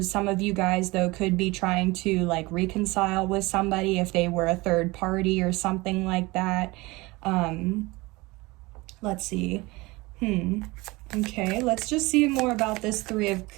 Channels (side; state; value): left; quieter; 22.6 dB